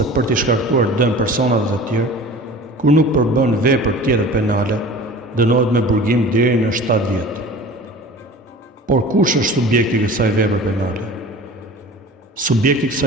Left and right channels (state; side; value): normal; both; correlation 0.40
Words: për t'i shkaktuar dëm personave të tjerë, kur nuk përbën vepër tjetër penale, dënohet me burgim deri në 7 vjet. Por kush është subjekti i kësaj vepre penale? Subjekti i